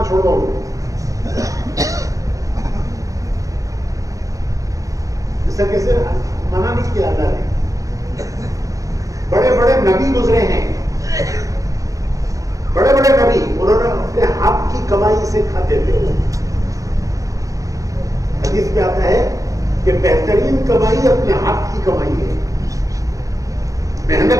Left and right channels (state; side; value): late; left; 0.16 ms